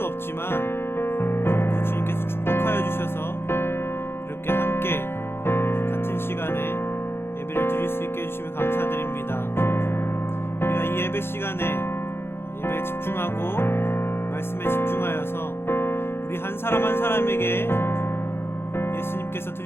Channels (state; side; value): late; right; 0.11 ms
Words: 없지만 또 주님께서 축복하여 주셔서 이렇게 함께 같은 시간에 예배를 드릴 수 있게 해주심에 감사드립니다. 우리가 이 예배 시간에 예배에 집중하고 말씀에 집중하여서 우리 한 사람 한 사람에게 예수님께서